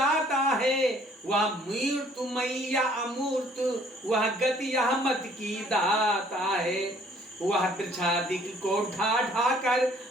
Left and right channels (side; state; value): both; normal; correlation 0.59